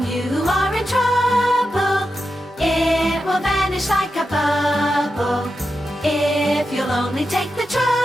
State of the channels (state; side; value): normal; both; correlation 0.89